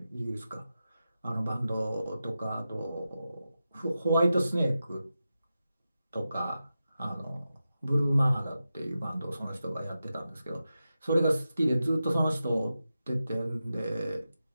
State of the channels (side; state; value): both; inverted; correlation -0.91